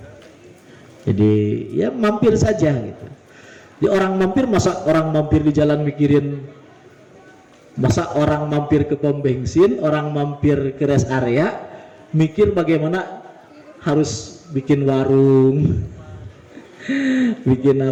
Jadi ya mampir saja gitu. Di orang mampir, masa orang mampir di jalan mikirin, masa orang mampir ke pom bensin, orang mampir ke rest area mikir bagaimana harus bikin warung, bikin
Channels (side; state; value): both; identical; correlation 1.00